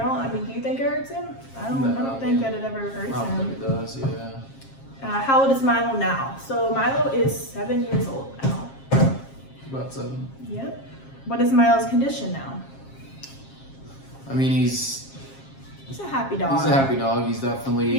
mean, do you think it hurts him? I don't think that it ever hurts him. I don't think it does, yeah. How old is Milo now? So Milo is 7 years old now. About 7. Yep. What is Milo's condition now? I mean, he's a happy dog. He's a happy dog. He's definitely...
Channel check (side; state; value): right; late; 7.4 ms